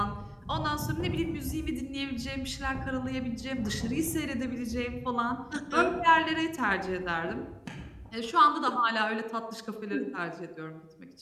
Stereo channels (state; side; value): identical; both; correlation 1.00